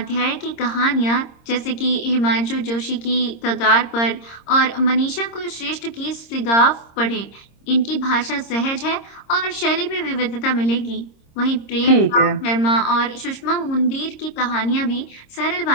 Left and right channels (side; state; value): right; late; 26 ms